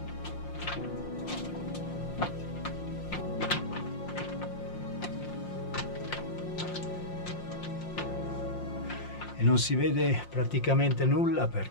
Non si vede praticamente nulla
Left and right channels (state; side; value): late; right; 5.7 ms